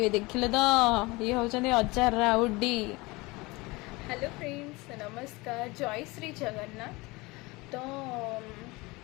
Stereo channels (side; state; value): right; quieter; 23.4 dB